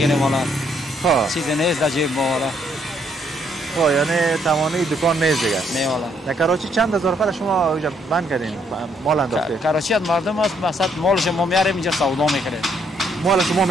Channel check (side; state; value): both; normal; correlation 0.71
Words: والا. خب چیزی نیست در جیب ما والا. خب یعنی تمامی دکان نیست دیگه. نه والا. در کراچی چند هزار نفر شما اینجا بند کردین مال انداخته؟ کراچی از مردم است مثلا مالش ما میاریم اینجا سودا میکنه. مال شما